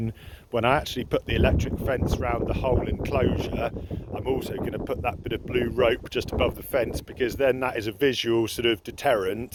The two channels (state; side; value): identical; both; correlation 1.00